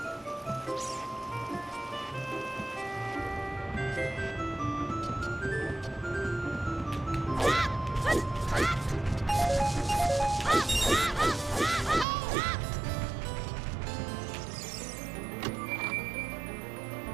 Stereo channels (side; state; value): left; drops out; at 12.1 s